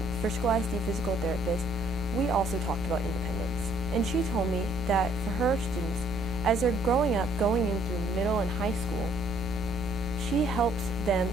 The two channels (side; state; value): both; normal; correlation 0.64